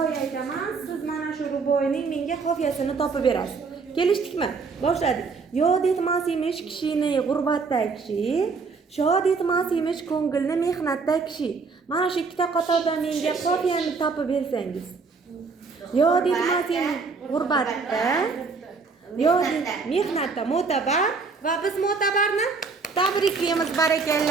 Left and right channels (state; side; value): quieter; left; 4.7 dB